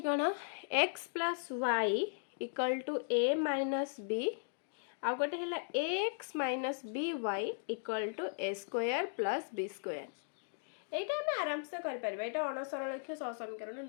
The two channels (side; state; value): right; silent; digital silence